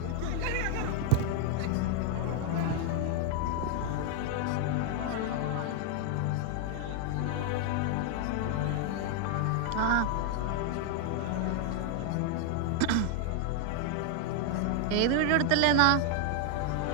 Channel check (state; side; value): different; both; correlation 0.00